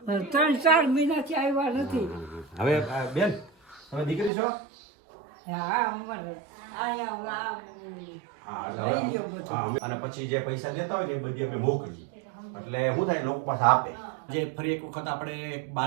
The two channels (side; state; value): left; drops out; at 4.3 s